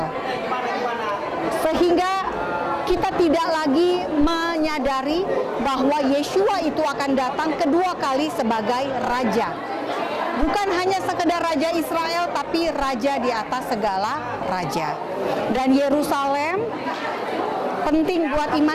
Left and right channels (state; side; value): identical; both; correlation 1.00